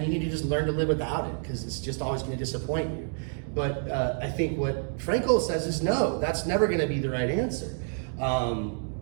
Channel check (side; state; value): left; silent; digital silence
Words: you need to just learn to live without it because it's just always going to disappoint you. But I think what Frankel says is no, that's never going to be the right answer.